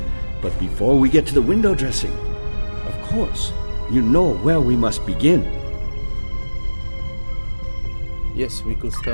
But before we get to the window dressing, of course, you know where we must begin. Yes, we could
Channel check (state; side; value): inverted; both; correlation -1.00